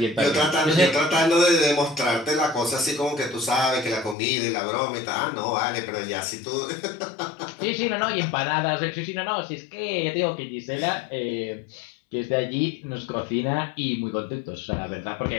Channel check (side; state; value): right; drops out; at 4.2 s